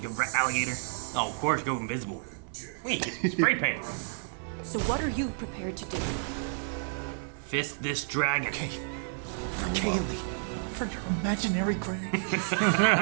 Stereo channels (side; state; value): left; silent; 57 dB below the other